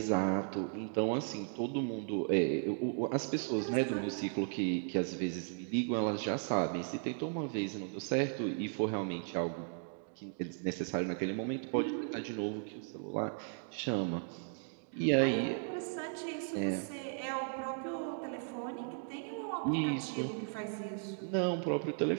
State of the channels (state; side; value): silent; left; 54 dB below the other